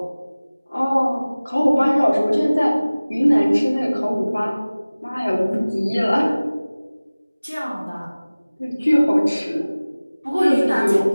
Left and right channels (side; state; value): both; inverted; correlation -0.99